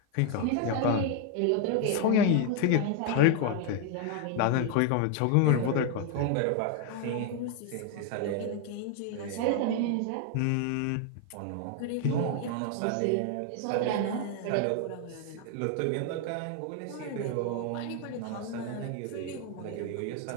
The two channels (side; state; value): both; different; correlation 0.01